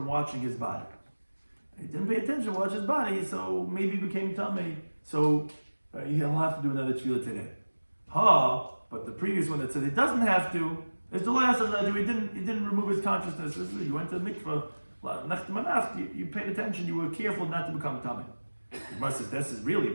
watching his body. He didn't pay attention to watch his body, so maybe he became tummy. So he'll have to do another tefillah today. But the previous one that says he doesn't have to is the last of that. He didn't remove his consciousness. You went to the mikvah, you paid attention, you were careful not to become tummy. The Gemara says this is really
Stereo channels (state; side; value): inverted; both; correlation -1.00